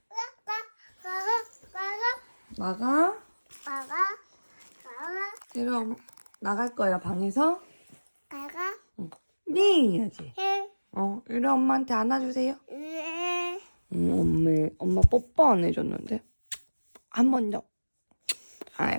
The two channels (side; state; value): both; inverted; correlation -1.00